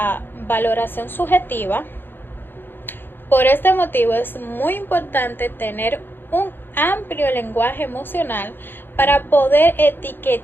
valoración subjetiva. Por este motivo es muy importante tener un amplio lenguaje emocional para poder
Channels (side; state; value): right; late; 0.099 ms